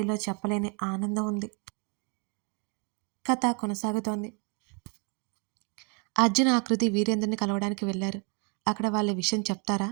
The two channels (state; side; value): quieter; left; 34.8 dB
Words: చెప్పలేని ఆనందం ఉంది. కథ కొనసాగుతోంది. అర్జున్ ఆకృతి వీరేంద్రని కలవడానికి వెళ్లారు. అక్కడ వాళ్ళ విషయం చెప్తారా?